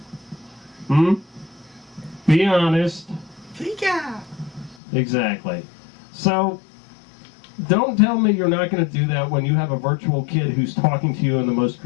Be honest. Pika! Exactly. So, Don't tell me you're not going to do that when you have a virtual kid who's talking to you in the most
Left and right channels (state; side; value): drops out; right; at 4.8 s